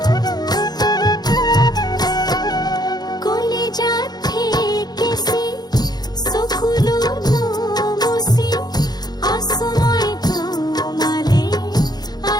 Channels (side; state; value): right; late; 0.19 ms